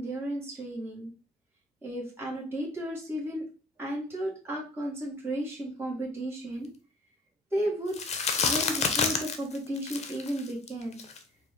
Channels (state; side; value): normal; both; correlation 0.50